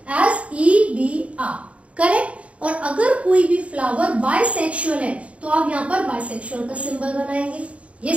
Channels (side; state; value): left; late; 0.063 ms